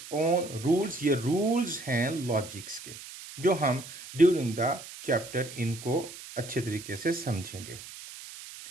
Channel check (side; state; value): right; noise; hiss, 14 dB below the sound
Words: own rules, ये रूल्स हैं लॉजिक्स के, जो हम ड्यूरिंग द चैप्टर इनको अच्छे तरीके से समझेंगे।